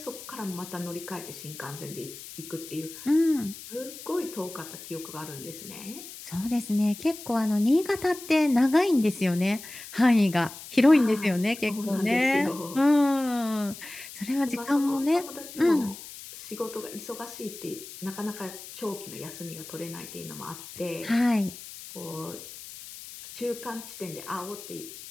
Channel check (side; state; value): left; noise; hiss, 14 dB below the sound